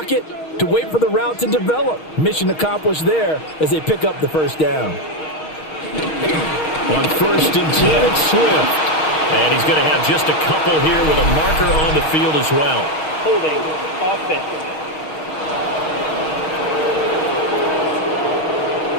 to wait for the route to develop. Mission accomplished there as they pick up the first down. On 1st and 10, it's Swift. And he's going to have just a couple here with a marker on the field as well. Holding offense.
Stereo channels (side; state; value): right; late; 6.4 ms